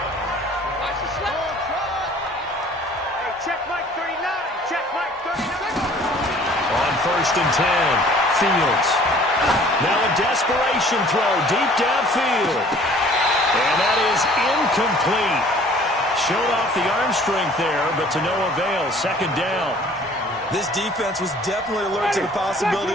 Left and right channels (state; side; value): normal; both; correlation 0.52